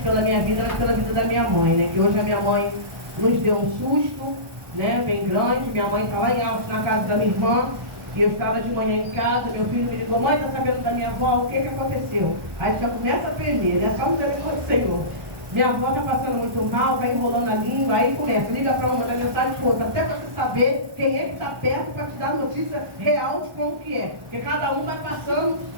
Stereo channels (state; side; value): late; left; 1.1 ms